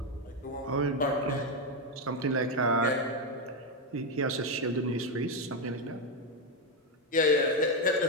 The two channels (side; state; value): both; normal; correlation 0.06